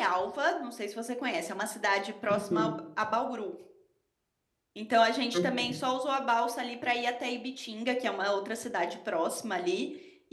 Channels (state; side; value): identical; both; correlation 1.00